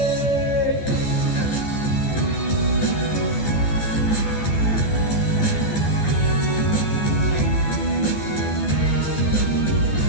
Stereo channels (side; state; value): right; late; 12 ms